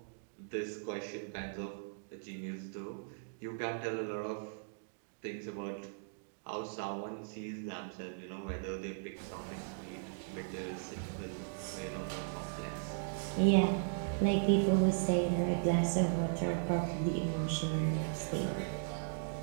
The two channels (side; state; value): left; silent; digital silence